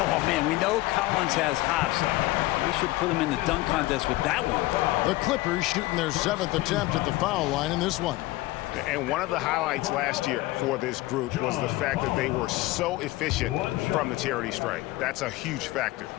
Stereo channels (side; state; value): right; quieter; 18.9 dB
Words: man, we know Collins has hops. We should put him in the dunk contest with that one. The Clippers shooting their 7th attempt at the foul line in this one. And one of the highlights last year for this group was the fact that they were so efficient from the charity stripe. That's a huge factor.